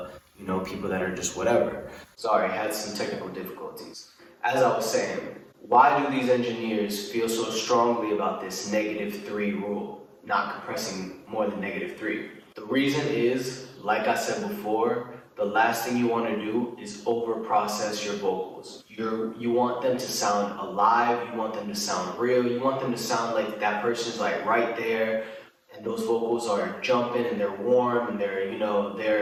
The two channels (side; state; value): both; identical; correlation 1.00